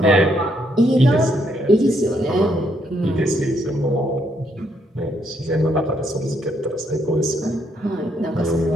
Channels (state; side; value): normal; both; correlation 0.74